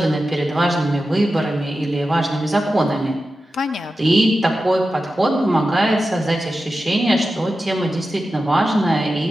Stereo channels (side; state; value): both; normal; correlation 0.92